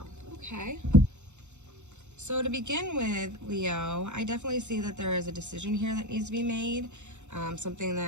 Okay. So to begin with, Leo, I definitely see that there is a decision here that needs to be made. Something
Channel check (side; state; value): left; late; 0.83 ms